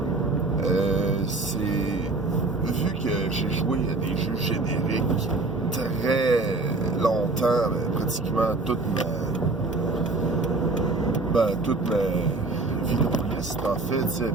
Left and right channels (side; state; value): left; quieter; 3.3 dB